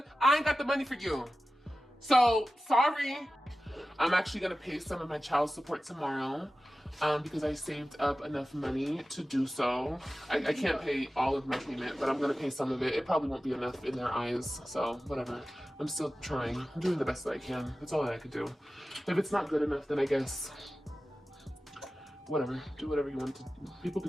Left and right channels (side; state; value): both; normal; correlation 0.95